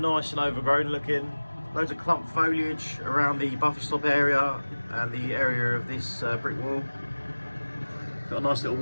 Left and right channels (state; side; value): inverted; both; correlation -1.00